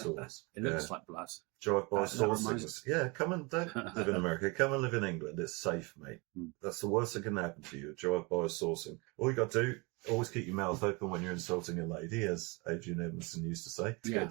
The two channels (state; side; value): quieter; left; 27.8 dB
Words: It looks like blood. Drive-by saucings. Yeah, come and don't live in America. Come and live in England. It's safe, mate. That's the worst that can happen to you. Drive-by saucing. All you got to do, always keep your mouth open when you're insulting a lady, as Adrian Edmondson used to say. Get a